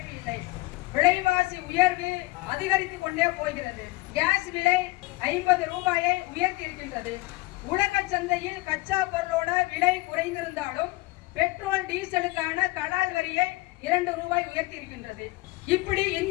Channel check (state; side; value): quieter; right; 21.8 dB